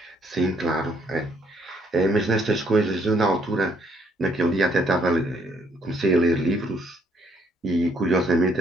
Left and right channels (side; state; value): both; normal; correlation 0.68